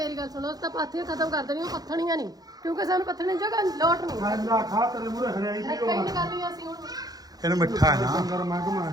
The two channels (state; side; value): late; left; 0.19 ms